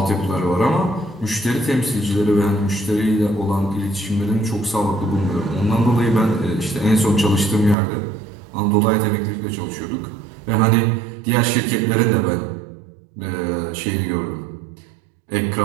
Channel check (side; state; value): left; drops out; at 7.8 s